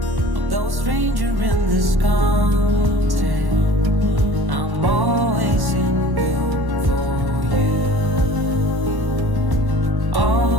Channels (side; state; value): left; late; 1.1 ms